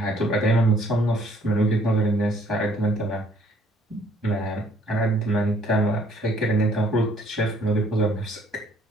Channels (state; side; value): normal; both; correlation 0.62